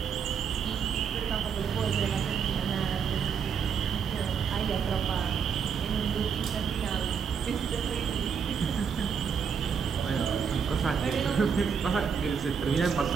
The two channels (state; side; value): quieter; left; 6.6 dB